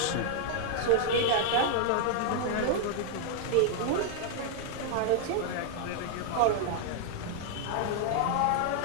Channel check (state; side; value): different; both; correlation -0.01